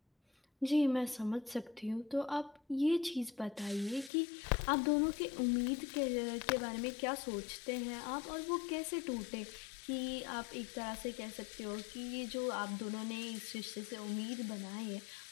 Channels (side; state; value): right; drops out; at 4.1 s